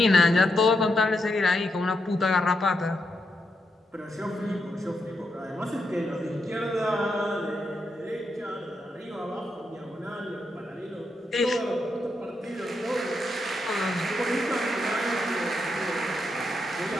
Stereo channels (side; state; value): both; normal; correlation 0.83